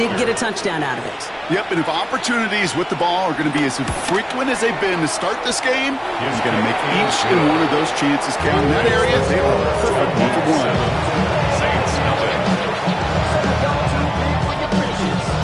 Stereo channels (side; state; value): both; identical; correlation 1.00